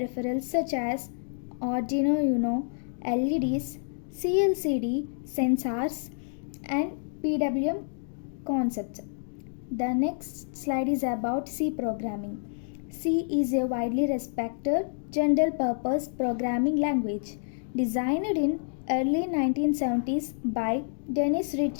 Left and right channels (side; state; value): right; silent; digital silence